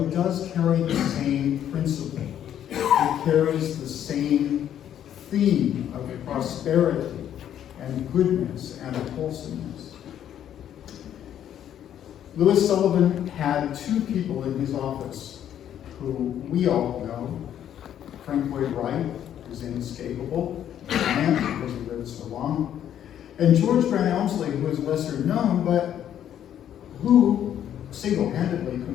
does carry the same principle. It carries the same theme of prosperity and goodness and wholesomeness. Louis Sullivan had two people in his office who we all know. Frank Lloyd Wright, who's inescapable, and because he lived so long, and George Grant Elmsley, who is lesser known, but who single-handedly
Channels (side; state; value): right; quieter; 10.3 dB